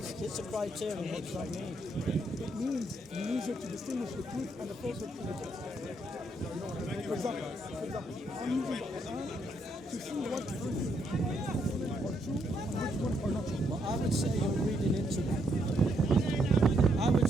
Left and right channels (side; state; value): both; normal; correlation 0.75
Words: it's a criterion, what does that mean? It means you use it to distinguish the truth and the falsehood from the text. For example, I'm using the Quran to see what verses are true and which ones are not true. Well, I would say you're reading into that. I